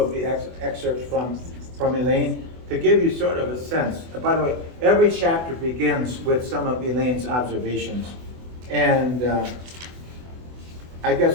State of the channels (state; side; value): late; left; 24 ms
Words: the excerpts from Elaine to give you sort of a sense. By the way, every chapter begins with some of Elaine's observations. And I